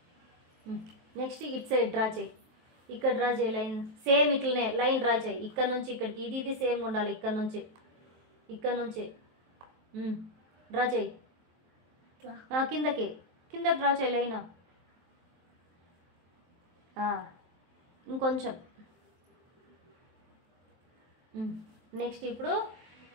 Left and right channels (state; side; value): late; left; 23 ms